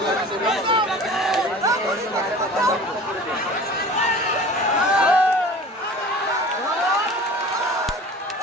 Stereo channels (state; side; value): normal; both; correlation 0.41